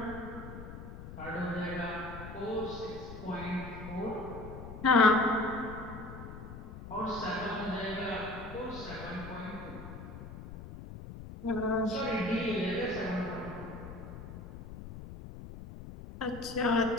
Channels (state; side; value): noise; left; rumble, 11 dB below the sound